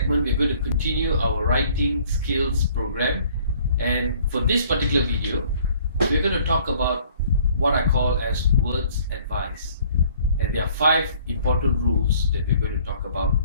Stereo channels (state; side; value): inverted; both; correlation -0.57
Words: we're going to continue our writing skills program. And for this particular video, we're going to talk about what I call as words advice. And there are 5 important rules that we're going to talk about